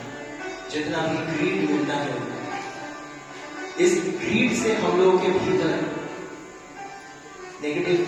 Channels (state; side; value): identical; both; correlation 1.00